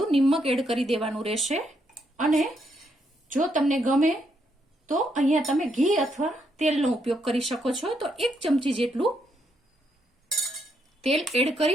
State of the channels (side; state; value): both; normal; correlation 0.77